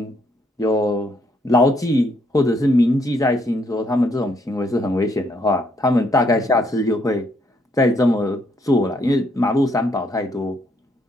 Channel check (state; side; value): normal; both; correlation 0.72